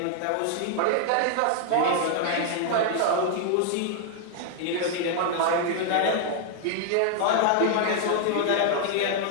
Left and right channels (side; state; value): both; different; correlation 0.00